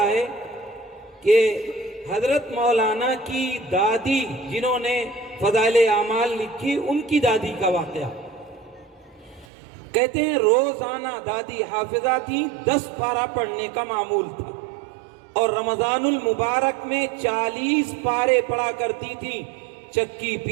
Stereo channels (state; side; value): drops out; left; at 9.5 s